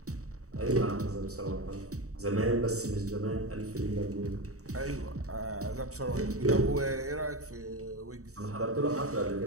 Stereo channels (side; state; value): left; late; 0.65 ms